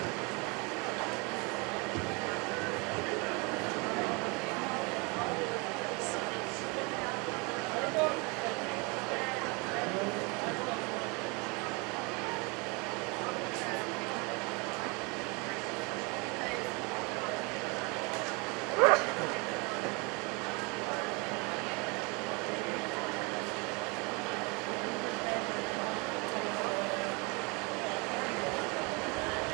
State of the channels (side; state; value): left; quieter; 29.4 dB